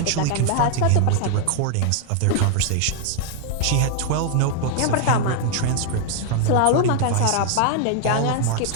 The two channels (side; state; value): both; different; correlation 0.00